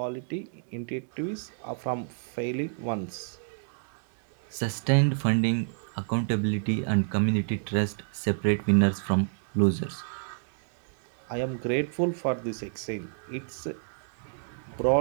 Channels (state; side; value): silent; left; digital silence